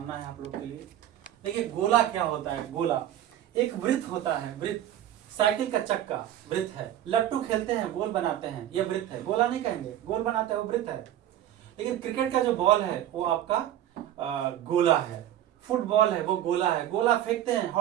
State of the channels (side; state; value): left; quieter; 11.9 dB